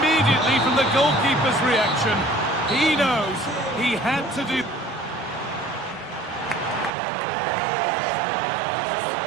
from the goalkeeper's reaction, he knows he had to do...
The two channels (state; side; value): drops out; left; at 6.9 s